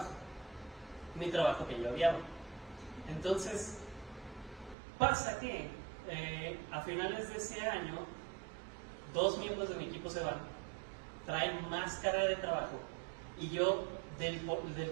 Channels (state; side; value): drops out; left; at 4.8 s